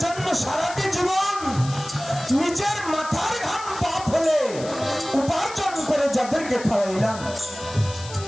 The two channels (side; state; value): left; noise; hiss, 14 dB below the sound